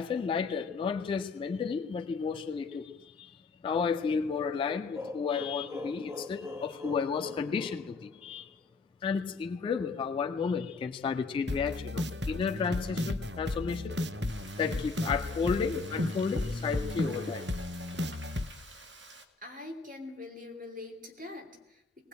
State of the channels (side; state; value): right; quieter; 4.4 dB